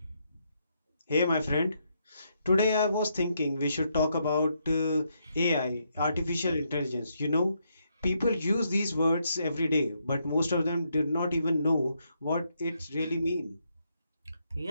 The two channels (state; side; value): inverted; both; correlation -0.78